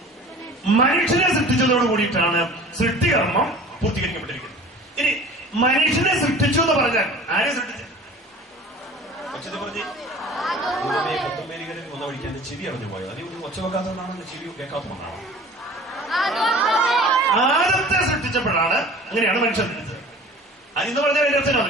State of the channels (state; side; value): normal; both; correlation 0.43